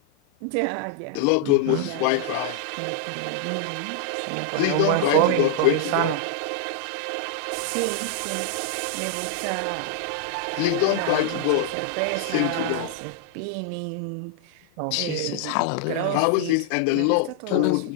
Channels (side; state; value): both; different; correlation -0.01